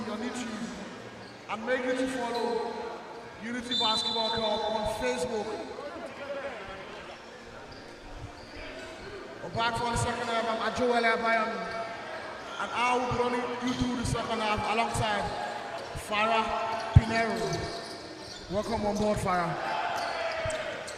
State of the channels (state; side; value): identical; both; correlation 1.00